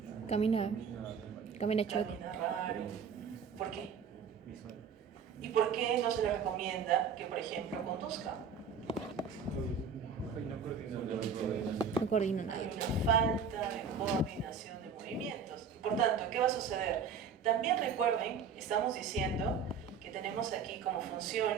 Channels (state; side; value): quieter; left; 6.3 dB